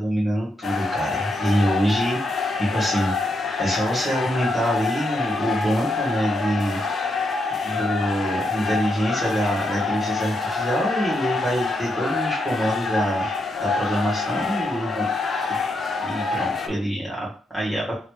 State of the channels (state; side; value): normal; both; correlation 0.80